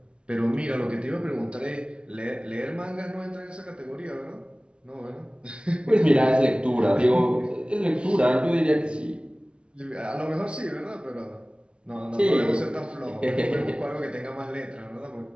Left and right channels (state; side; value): late; left; 0.057 ms